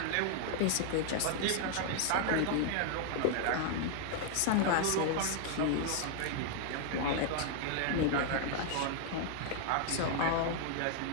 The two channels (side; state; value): both; different; correlation 0.00